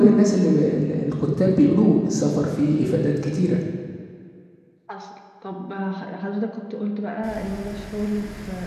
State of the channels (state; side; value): identical; both; correlation 1.00